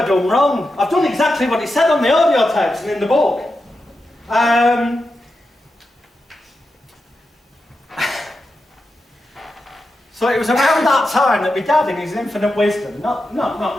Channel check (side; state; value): both; normal; correlation 0.89